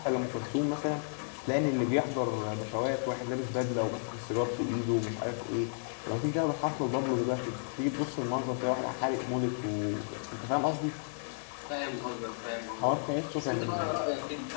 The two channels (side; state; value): right; silent; digital silence